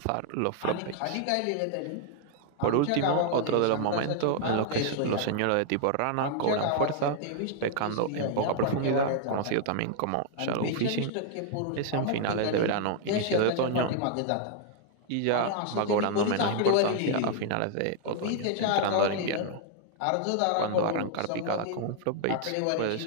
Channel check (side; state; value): both; different; correlation 0.00